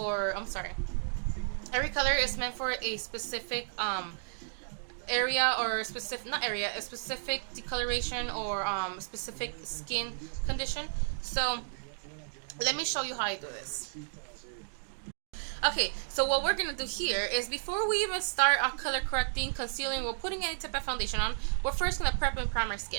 I'm sorry. Every color is meant for a specific area or specific not area a specific decoloration or specific skin condition. So let me show you how I do this. Okay, so what we're gonna do here is before we even start our color correcting, concealing, or putting any type of foundation on, we're first gonna prep and prime our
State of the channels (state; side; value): silent; left; digital silence